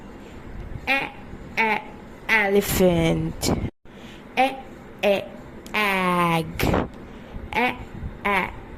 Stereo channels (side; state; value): both; identical; correlation 1.00